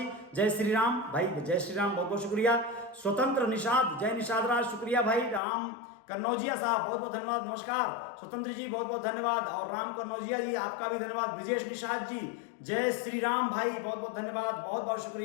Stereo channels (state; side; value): drops out; right; at 5.4 s